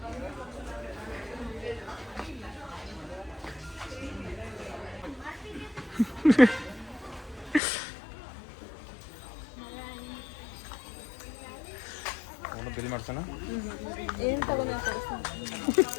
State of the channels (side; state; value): right; drops out; at 7.6 s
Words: ಬಿಲ್ ಮಾಡ್ಸೋಣ ಏನು ತಗೊಂಡ